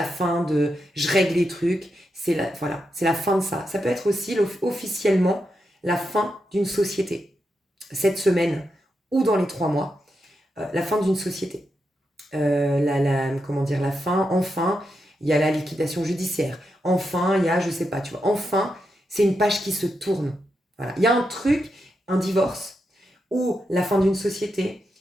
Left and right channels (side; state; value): both; normal; correlation 0.85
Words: fin de je règle les trucs, c'est la fin de ça. Ça peut être aussi officiellement la fin d'une société. Cette semaine ou dans les 3 mois, la fin d'une société. La fin, enfin, il y a la liquidation judiciaire. Enfin, il y a, je sais pas, tu vois, enfin, c'est une page qui se tourne. Voilà. Il y a un truc, un divorce, ou la fin d'une société,